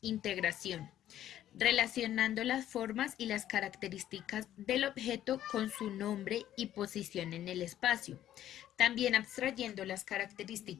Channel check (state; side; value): quieter; right; 12.0 dB